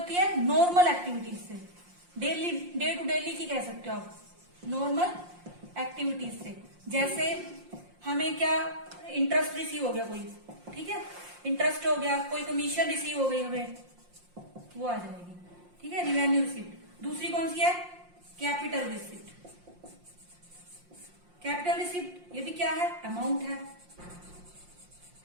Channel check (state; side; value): late; left; 5.7 ms